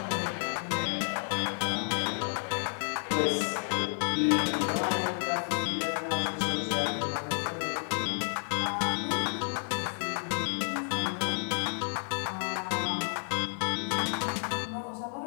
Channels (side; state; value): right; silent; 57 dB below the other